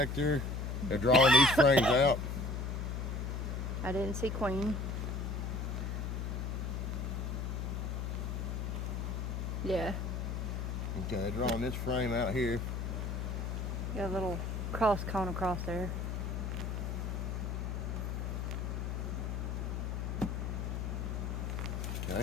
They're drawing these frames out. I didn't see queen. Yeah. Okay, they're drawing this frame out here. Got a little cross cone across there.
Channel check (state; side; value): noise; left; hum, 2 dB below the sound